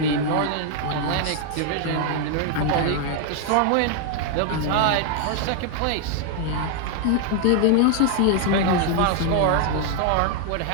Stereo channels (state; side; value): different; both; correlation 0.00